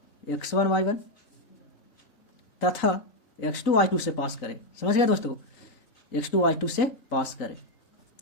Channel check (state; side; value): late; right; 3.9 ms